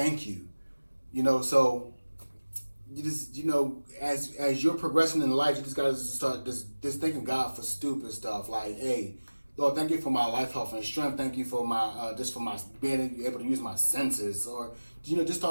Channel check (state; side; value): inverted; both; correlation -1.00